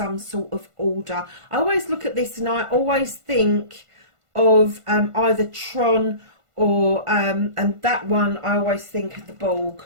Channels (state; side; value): late; left; 1.5 ms